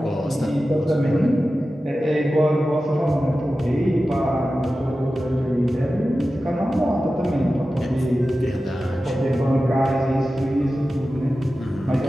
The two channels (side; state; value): both; normal; correlation 0.94